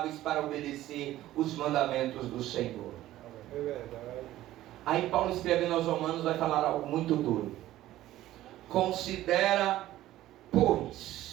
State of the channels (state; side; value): quieter; left; 14.6 dB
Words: para obedecer os mandamentos do Senhor. É verdade. Aí Paulo, escrevendo aos Romanos, vai falar algo muito duro. Considera,